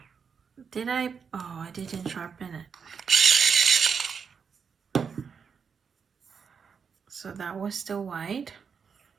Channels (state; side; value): quieter; left; 6.2 dB